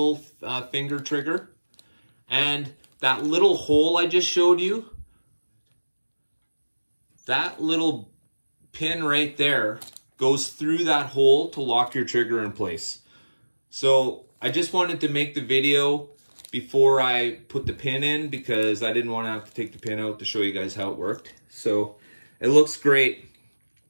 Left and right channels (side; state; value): both; inverted; correlation -1.00